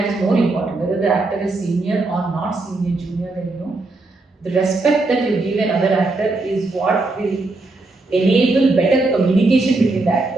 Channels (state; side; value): quieter; left; 3.2 dB